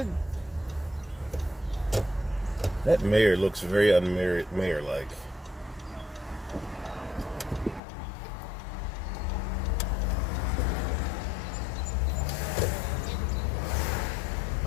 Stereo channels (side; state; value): right; drops out; at 7.8 s